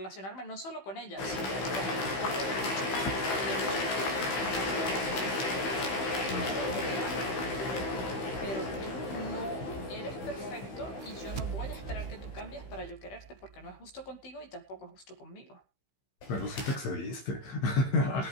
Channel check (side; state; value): right; late; 15 ms